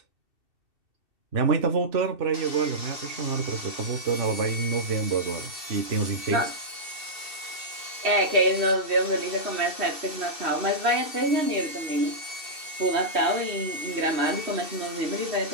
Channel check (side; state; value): left; late; 2.7 ms